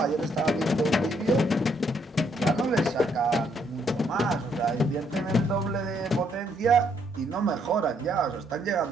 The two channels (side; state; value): both; normal; correlation 0.71